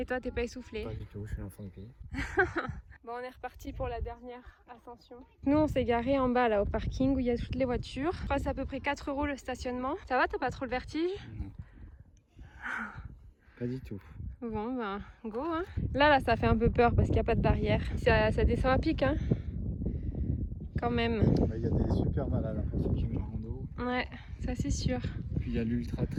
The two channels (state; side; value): identical; both; correlation 1.00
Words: toi, t'es pas essoufflé? Pas du tout, je suis l'enfant du pays. Bon, on est reparti pour la dernière ascension. Nous, on s'est garé en bas là au parking où il y a toutes les voitures. Je crois que c'est à peu près 4 € le stationnement. Ça va, t'as pas trop le vertige? Non. Pas du tout. Bon, go hein. Là, ça fait un peu peur parce qu'il n'y a pas de barrière. Ça descend à pic, hein. Quand même. Il y a des super malades pour ceux qui aiment la rando. Ouais, ça c'est sûr. Puis il y a l'ultra